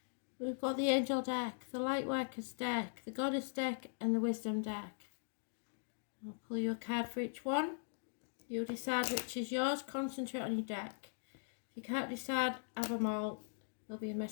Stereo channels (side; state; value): right; silent; digital silence